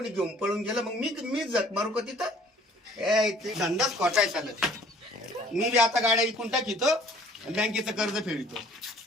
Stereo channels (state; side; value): normal; both; correlation 0.55